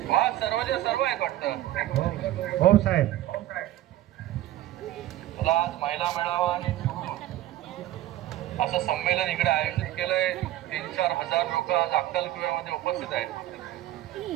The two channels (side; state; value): left; quieter; 14.5 dB